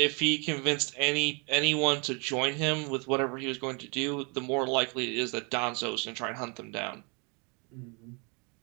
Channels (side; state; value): left; quieter; 33.6 dB